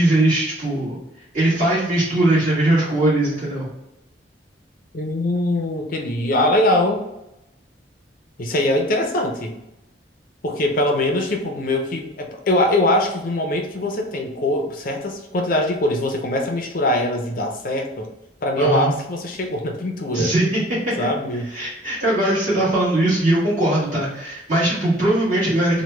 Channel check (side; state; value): both; normal; correlation 0.45